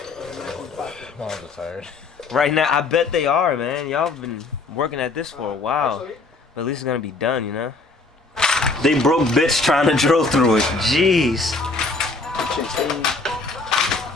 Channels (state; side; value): quieter; right; 3.6 dB